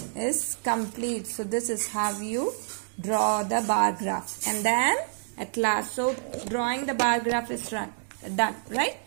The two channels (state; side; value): silent; left; digital silence